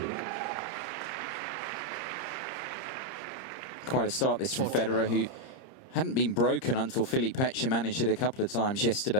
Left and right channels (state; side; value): late; right; 30 ms